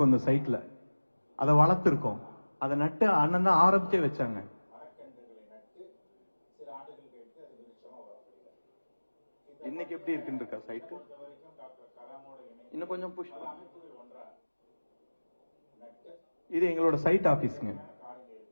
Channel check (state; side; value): inverted; both; correlation -1.00